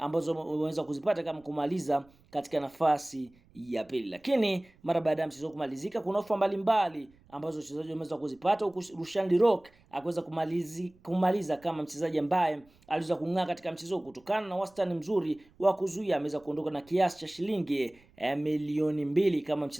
wameweza kuzipata kama kumaliza katika nafasi ya pili. Lakini mara baada ya mchezo kumalizika kuna ofa mbalimbali ambazo wachezaji wameweza kuzipata, huku Rushan De Reuck akaweza kumaliza kama mchezaji ambaye aliweza kung'aa katika mchezo kutokana na wastani mzuri wa kuzuia. Ameweza kuondoka na kiasi cha shilingi milioni 2 kama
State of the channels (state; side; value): noise; right; rumble, 30 dB below the sound